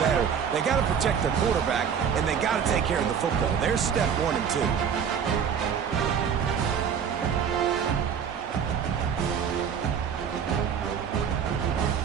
better. They got to protect their quarterback, and they got to take care of the football. There's step 1 and 2.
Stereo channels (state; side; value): quieter; left; 7.4 dB